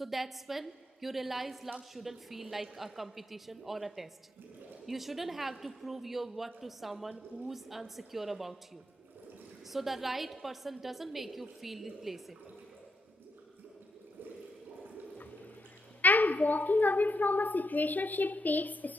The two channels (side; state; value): both; normal; correlation 0.81